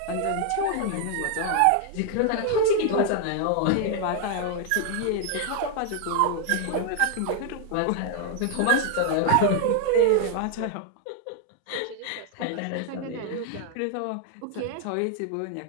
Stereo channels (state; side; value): different; both; correlation 0.00